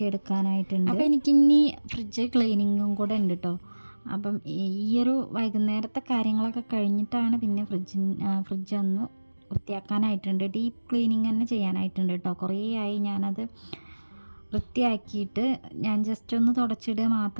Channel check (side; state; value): both; inverted; correlation -1.00